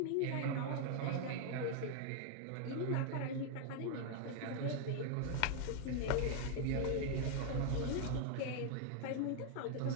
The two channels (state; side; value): different; both; correlation 0.00